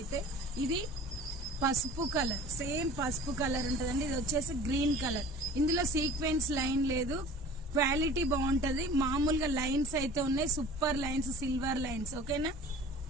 ఇది పసుపు కలర్, సేమ్ పసుపు కలర్ ఉంటదండి. ఇది వచ్చేసి గ్రీన్ కలర్. ఇందులో సీక్వెన్స్ లైన్ లేదు, క్వాలిటీ బాగుంటది. మామూలుగా లైన్స్ అయితే ఉన్నాయి, సూపర్ లైన్స్, సిల్వర్ లైన్స్. ఓకేనా,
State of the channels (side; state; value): both; normal; correlation 0.43